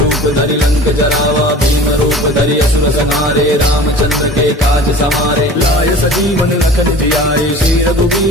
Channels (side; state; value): both; normal; correlation 0.41